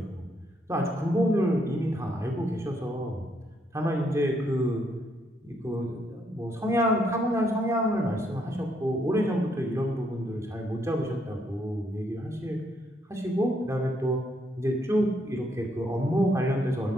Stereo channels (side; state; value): both; normal; correlation 0.74